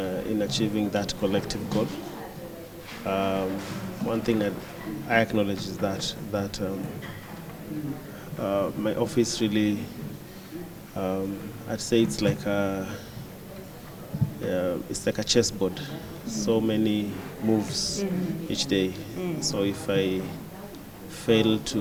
in achieving that collective goal. One thing that I acknowledge is that my office really, I'd say it's like a chessboard. So many moves each day. So if I fail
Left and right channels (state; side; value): identical; both; correlation 1.00